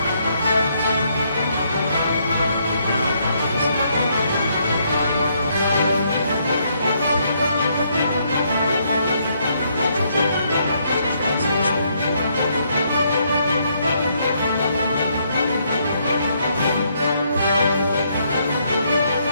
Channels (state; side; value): inverted; both; correlation -0.72